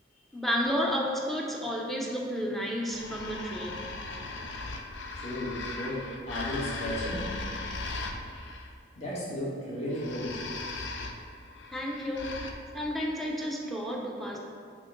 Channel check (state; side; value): normal; both; correlation 0.50